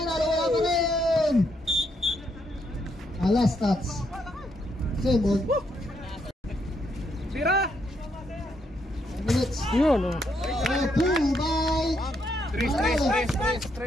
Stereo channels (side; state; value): both; normal; correlation 0.76